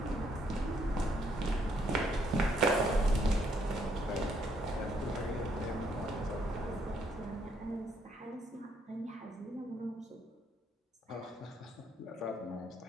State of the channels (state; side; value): normal; both; correlation 0.71